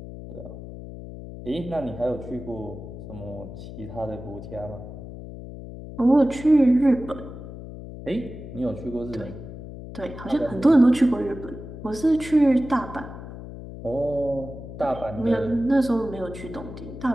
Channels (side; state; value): left; noise; hum, 12 dB below the sound